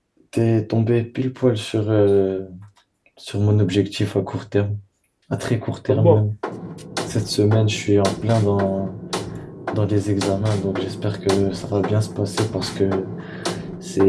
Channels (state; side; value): identical; both; correlation 1.00